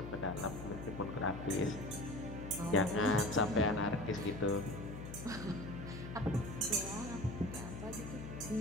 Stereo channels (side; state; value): left; noise; hum, 9 dB below the sound